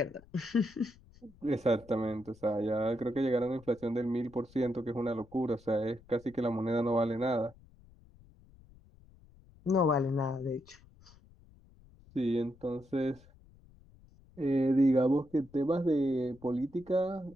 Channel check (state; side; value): noise; left; rumble, 25 dB below the sound